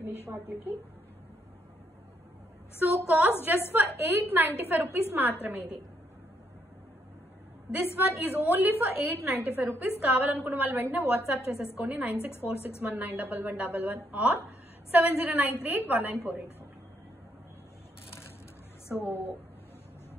ఫినిష్ వాటికి. So cost just for 895 rupees మాత్రమే ఇది. This one is only for 895 rupees. కావాలనుకున్న వాళ్ళు వెంటనే వాట్సాప్ చేసేసుకోండి 9646191111 ఆర్ 7093819484. సో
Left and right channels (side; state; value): both; normal; correlation 0.74